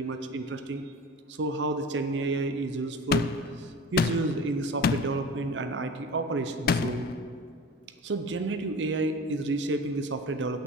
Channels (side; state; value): both; normal; correlation 0.37